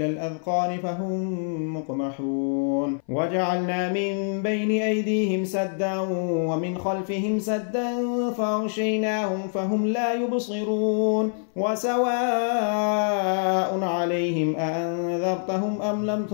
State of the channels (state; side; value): silent; right; 58 dB below the other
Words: الأذقان فهم مقمحون. وجعلنا من بين أيديهم سدا ومن خلفهم سدا فأغشيناهم فهم لا يبصرون. وسواء عليهم أأنذرتهم أم لم